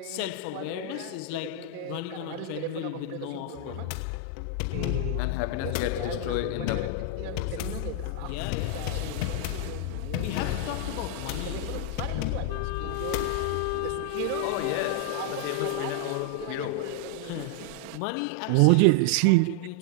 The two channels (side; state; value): both; different; correlation 0.00